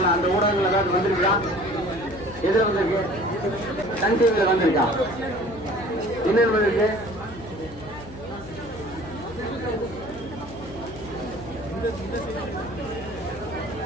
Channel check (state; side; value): noise; left; hum, 16 dB below the sound